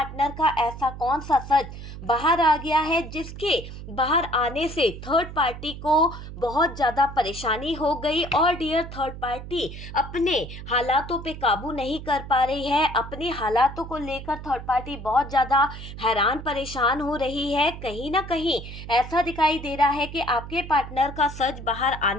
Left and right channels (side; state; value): right; noise; hum, 11 dB below the sound